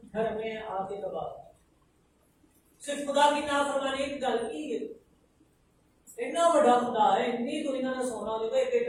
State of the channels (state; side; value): identical; both; correlation 1.00